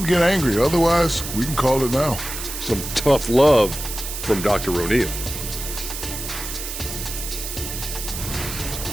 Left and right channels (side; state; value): right; noise; hiss, 7 dB below the sound